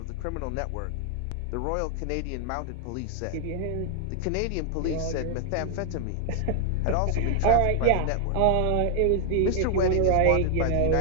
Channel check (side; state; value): both; different; correlation 0.00